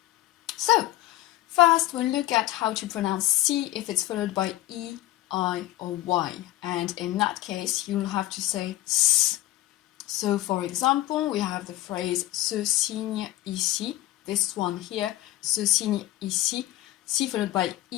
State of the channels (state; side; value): quieter; right; 15.9 dB